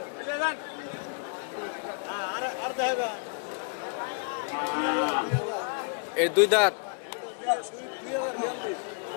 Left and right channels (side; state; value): right; quieter; 38.8 dB